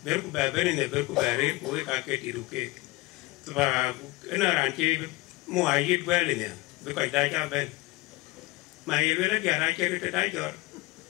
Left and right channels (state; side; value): quieter; right; 19.8 dB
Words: bên của bên này bên của bên của cái gì đủ cái và cái nào làm chi mua ai ít về này với cái đại gia bên mà yêu là dia ra chơi cái đại giọt